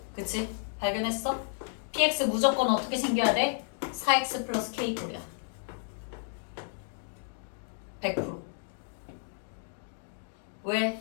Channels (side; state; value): right; silent; 57 dB below the other